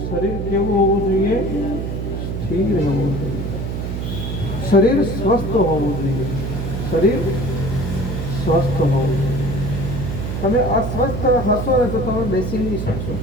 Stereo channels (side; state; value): right; noise; hum, 4 dB below the sound